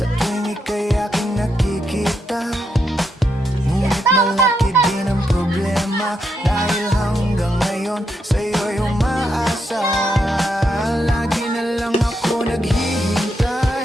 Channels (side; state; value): both; normal; correlation 0.81